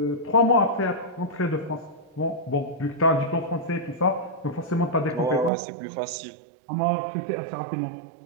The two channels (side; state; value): left; drops out; at 5.5 s